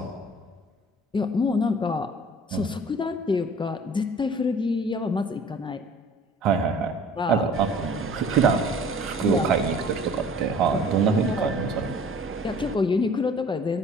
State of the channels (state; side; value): normal; both; correlation 0.49